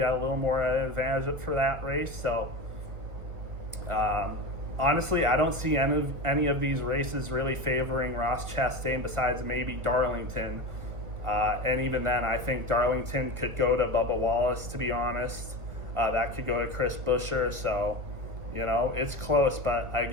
at a little more advantage for that race. So honestly, I don't see any of these races really favoring Ross Chastain besides maybe Darlington. And even then, I think Darlington could go to Bubba Wallace, to be honest. That could go to Chris Buescher. So, you know, it's close. But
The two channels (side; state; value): left; late; 1.6 ms